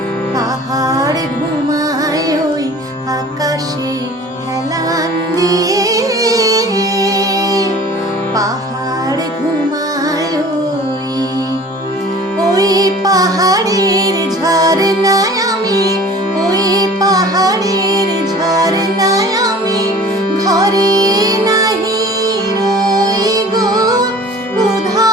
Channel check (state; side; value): normal; both; correlation 0.45